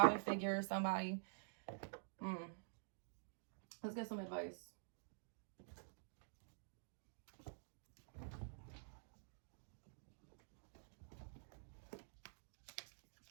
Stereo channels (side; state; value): left; silent; digital silence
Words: figure or somebody. Let's get some advice.